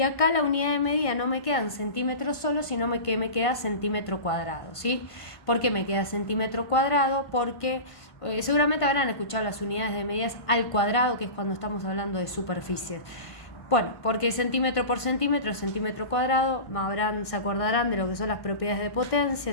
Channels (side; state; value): right; late; 1.5 ms